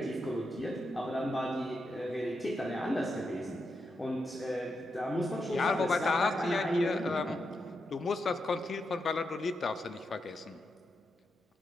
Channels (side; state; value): both; normal; correlation 0.85